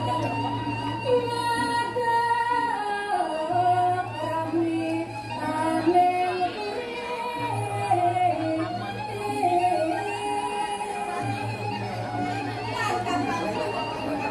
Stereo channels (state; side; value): identical; both; correlation 1.00